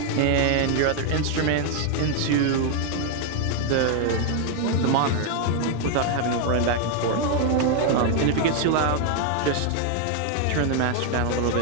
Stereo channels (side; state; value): both; different; correlation 0.00